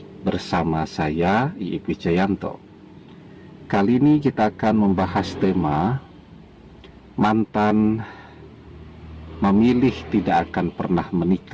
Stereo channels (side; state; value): both; identical; correlation 1.00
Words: bersama saya, IIP Wijayanto. Kali ini kita akan membahas tema mantan memilih tidak akan pernah